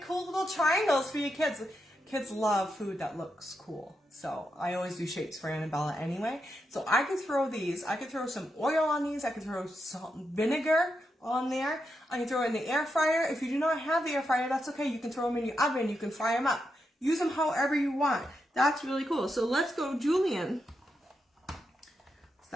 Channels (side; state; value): both; normal; correlation 0.85